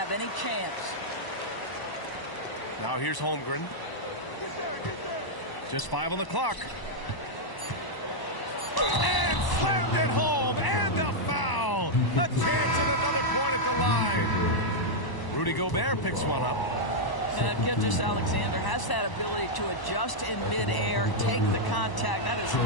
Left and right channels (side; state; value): right; late; 1.0 ms